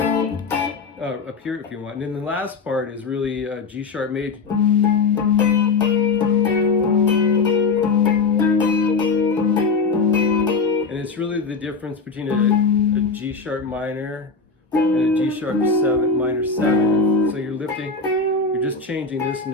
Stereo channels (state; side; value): quieter; right; 4.4 dB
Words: you want. And then the last part is really a G sharp major. It's really the difference between a G sharp minor and a G sharp minor 7. So you're you're just changing this